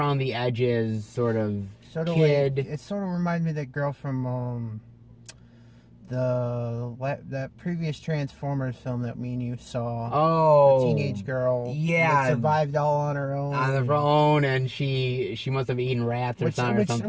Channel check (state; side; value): identical; both; correlation 1.00